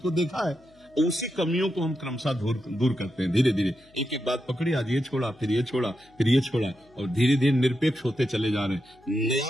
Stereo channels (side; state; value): left; noise; hum, 30 dB below the sound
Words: देखा है। उसी कमियों को हम क्रमशः दूर करते हैं, धीरे धीरे एक एक बात पकड़ी, आज ये छोड़ा, फिर ये छोड़ा, फिर ये छोड़ा, और धीरे धीरे निरपेक्ष होते चले जा रहे हैं।